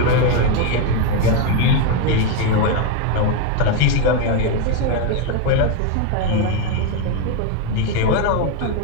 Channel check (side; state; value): both; different; correlation 0.02